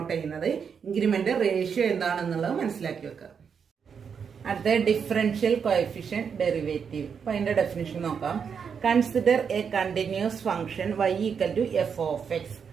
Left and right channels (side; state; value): left; quieter; 6.7 dB